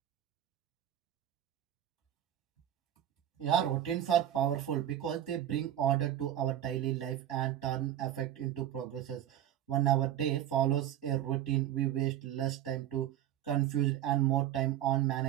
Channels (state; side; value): quieter; left; 11.7 dB